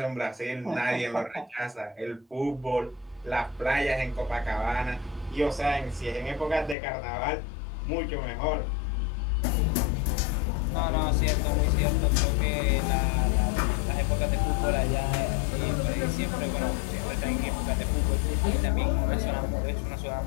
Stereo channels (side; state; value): right; drops out; at 6.8 s